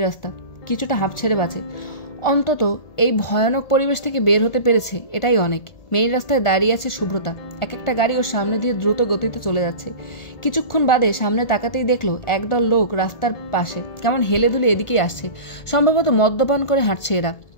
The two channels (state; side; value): late; right; 1.4 ms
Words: রাস্তা। কিছুটা হাঁপ ছেড়ে বাঁচে। অন্তত এই ভয়ানক পরিবেশ থেকে বের হতে পেরেছে, এটাই অনেক। মেইন রাস্তায় দাঁড়িয়ে আছে সুব্রতা। এক একটা গাড়ি ওর সামনে দিয়ে দ্রুত গতিতে চলে যাচ্ছে। কিছুক্ষণ বাদে সামনে তাকাতেই দেখলো একদল লোক রাস্তার পাশে কেমন হেলে দুলে এদিকেই আসছে। সম্ভবত মদ্যপান করে হাঁটছে এরা।